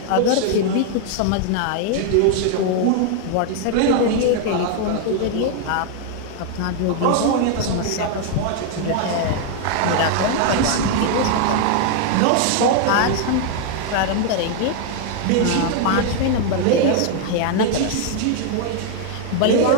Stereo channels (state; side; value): different; both; correlation 0.00